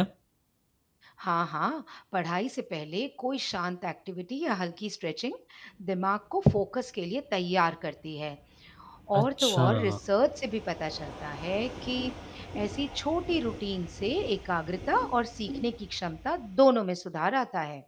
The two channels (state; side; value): identical; both; correlation 1.00